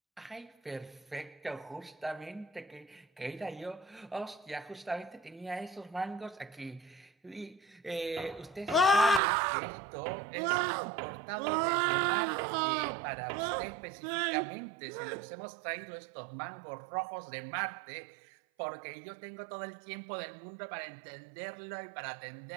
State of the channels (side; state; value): left; drops out; at 9.2 s